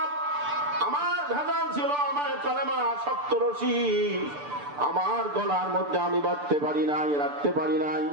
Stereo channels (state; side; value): late; left; 6.9 ms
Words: আমার ভেজাল ছিল, আমার কালেমা শক্ত রশি আমার গলার মধ্যে আমি বাঁধতে পারি নাই, রাখতে পারি নাই।